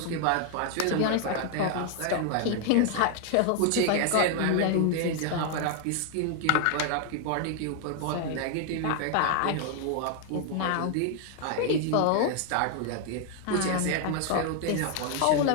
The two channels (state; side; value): different; both; correlation 0.00